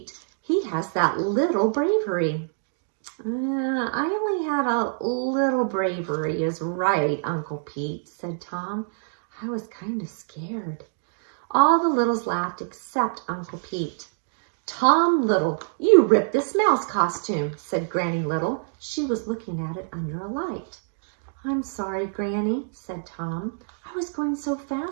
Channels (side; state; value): left; silent; digital silence